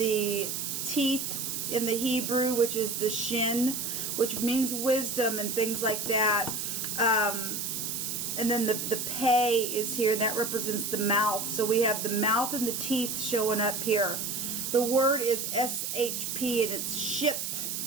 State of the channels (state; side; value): noise; right; hiss, 3 dB below the sound